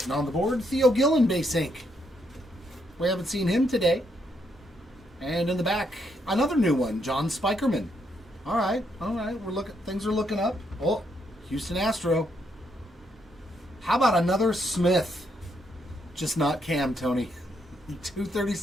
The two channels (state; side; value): normal; both; correlation 0.76